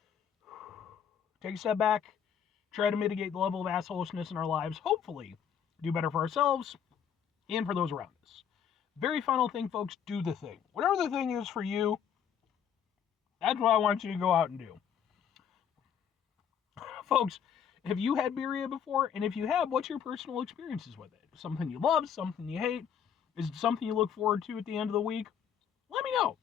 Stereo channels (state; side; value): quieter; right; 8.3 dB